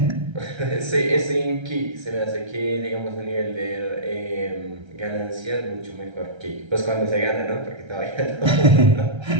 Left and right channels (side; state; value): left; late; 1.3 ms